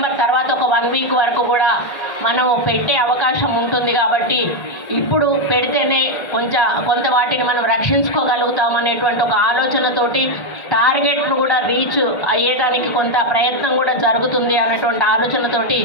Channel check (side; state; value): right; late; 1.5 ms